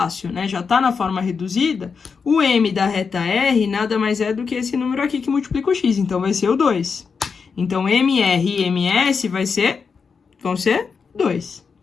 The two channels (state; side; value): quieter; right; 5.5 dB